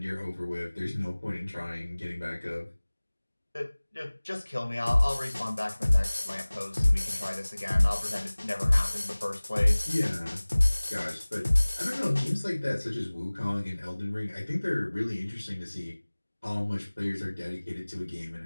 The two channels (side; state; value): both; inverted; correlation -1.00